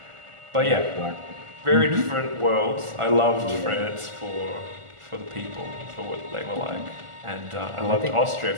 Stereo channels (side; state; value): left; late; 1.4 ms